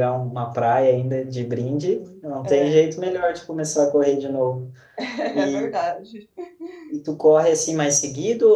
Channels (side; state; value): both; identical; correlation 1.00